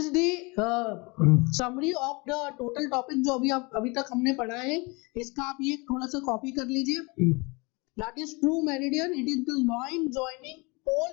the summary of the total topic जो अभी तक हमने पढ़ा है. इसका आप ये थोड़ा सा कॉपी कर लीजिए. That is true meridian. It is the line joining pole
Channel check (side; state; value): right; quieter; 27.6 dB